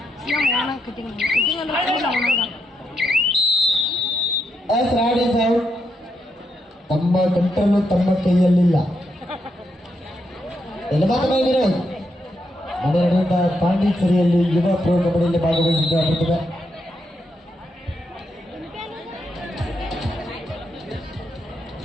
ತಮ್ಮ ಕಟ್ಟನ್ನು ತಮ್ಮ ಕೈಯಲ್ಲಿಲ್ಲ. ಮನೆ ನಡೆದ ಪಾಂಡಿಚೇರಿಯಲ್ಲಿ ಯುವ ಪ್ರೋ ಕಬಡ್ಡಿಯಲ್ಲಿ ಭಾಗವಹಿಸಿದ್ದ ಪ್ರತಿಭೆ.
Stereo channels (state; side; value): normal; both; correlation 0.81